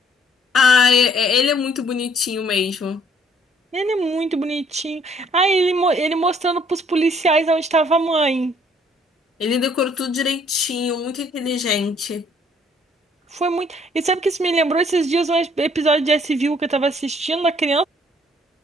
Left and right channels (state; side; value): normal; both; correlation 0.62